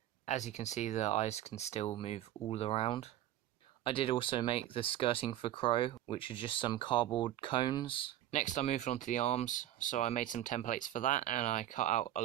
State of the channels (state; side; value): quieter; left; 12.7 dB